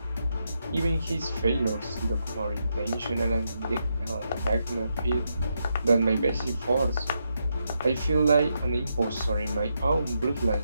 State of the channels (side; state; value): both; inverted; correlation -0.82